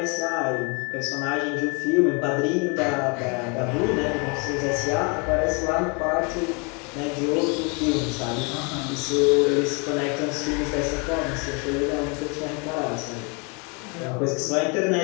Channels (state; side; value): quieter; right; 32.6 dB